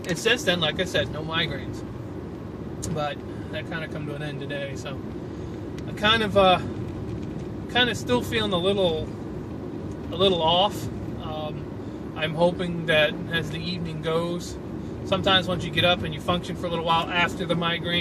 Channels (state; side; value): identical; both; correlation 1.00